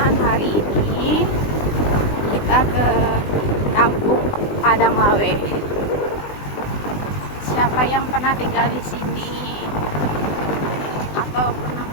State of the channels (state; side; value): late; right; 20 ms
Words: Hari ini kita ke Kampung Padang Lawe. Siapa yang pernah tinggal di sini atau pernah